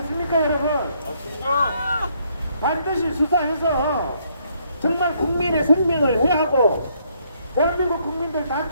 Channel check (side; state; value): both; inverted; correlation -0.70